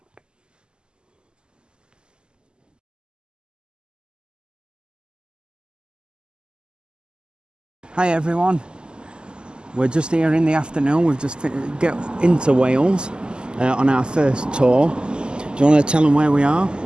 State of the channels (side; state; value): left; late; 0.047 ms